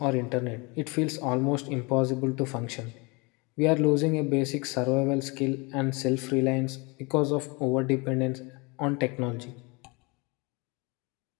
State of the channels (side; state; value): right; quieter; 28.0 dB